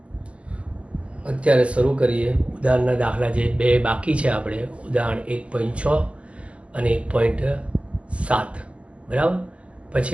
અત્યારે શરૂ કરીએ ઉદાહરણના દાખલા જે બે બાકી છે. આપણે ઉદાહરણ 1.6 અને 1.7, બરાબર.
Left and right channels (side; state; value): left; late; 0.061 ms